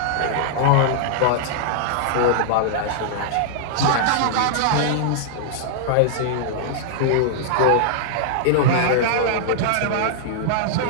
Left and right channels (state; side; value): different; both; correlation -0.01